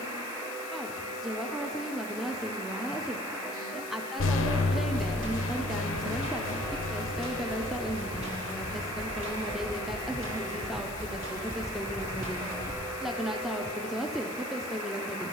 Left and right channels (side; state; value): left; noise; hiss, 13 dB below the sound